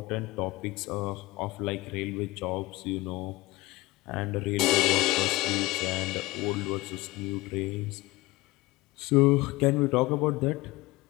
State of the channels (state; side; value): quieter; right; 20.6 dB